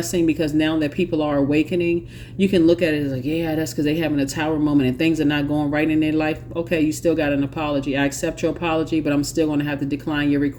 because now that people are awakening, you can look at it as like, yeah, that's because they're having a tower moment and things are not going right in their life. Okay, you still got an apology. I accept your apology, but I'm still going to have to decline your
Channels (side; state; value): both; identical; correlation 1.00